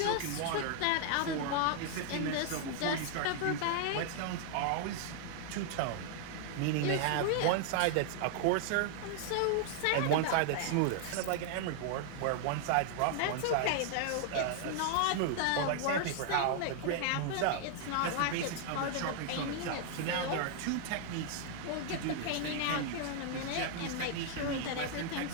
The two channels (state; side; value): different; both; correlation 0.00